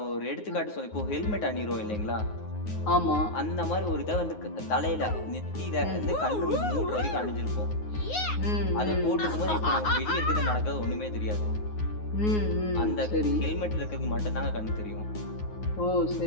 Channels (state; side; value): late; right; 9.5 ms